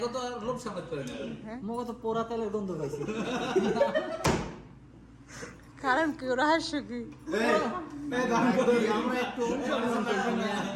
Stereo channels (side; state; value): both; identical; correlation 1.00